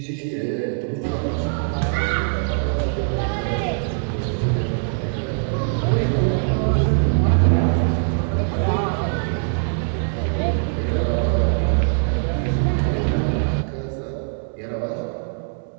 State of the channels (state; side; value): silent; left; 64 dB below the other